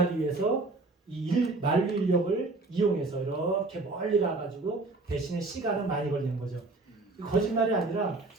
위해서 만류 인력을 이용해서 이렇게 멀리 가가지고 대신에 시간은 많이 걸리는 거죠. 거짓말이 아니라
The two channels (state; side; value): quieter; left; 3.3 dB